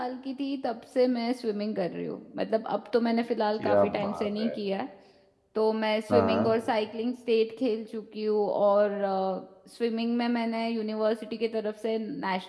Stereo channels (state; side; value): identical; both; correlation 1.00